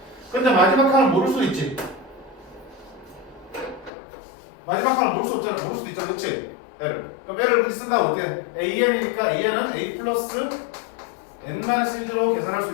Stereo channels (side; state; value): right; drops out; at 3.9 s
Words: 근데 마지막 항을 모를 수도 있지. 마지막 항을 모를 수 없잖아. 모를 수도 있잖아. 그치? L을. 그럼 L을 그렇게 쓴다고 어떻게? AN이니까 AN은 A 플러스 n-1로 계산할 수